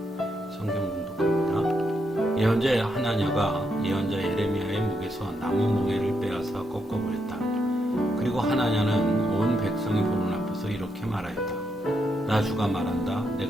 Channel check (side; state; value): both; normal; correlation 0.80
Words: 성경 봉독합니다. 예언자 하나냐가 예언자 예레미야의 목에서 나무 멍에를 빼앗아 꺾어버렸다. 그리고 하나냐는 온 백성이 보는 앞에서 이렇게 말하였다. 나 주가 말한다.